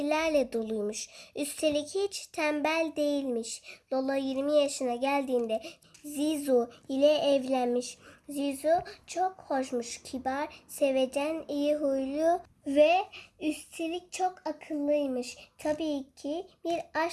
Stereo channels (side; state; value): both; identical; correlation 1.00